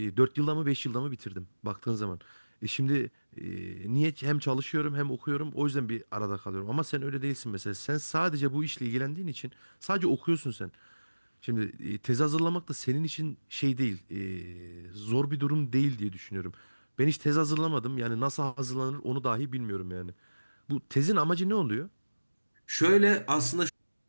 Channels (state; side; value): inverted; both; correlation -1.00